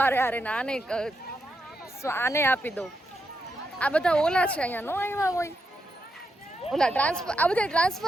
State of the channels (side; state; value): both; normal; correlation 0.84